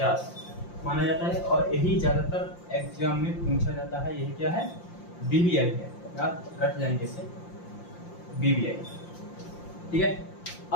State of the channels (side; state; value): right; late; 5.7 ms